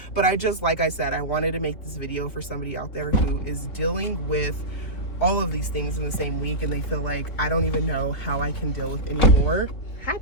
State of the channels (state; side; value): late; right; 3.4 ms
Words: But I just, like I said, I wanted to make this video for somebody out there who is dealing with all of these things in the same week. And they feel like, I don't even know how I can deal with anymore. Hi,